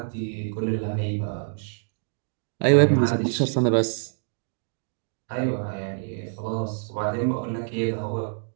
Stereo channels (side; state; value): left; silent; digital silence